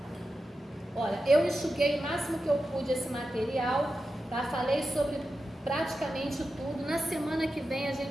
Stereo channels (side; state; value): both; normal; correlation 0.91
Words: Olha, eu enxuguei o máximo que eu pude esse material, tá? Falei sobre praticamente tudo. Na semana que vem a